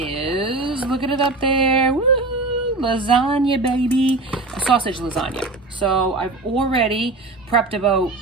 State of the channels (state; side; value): quieter; left; 3.2 dB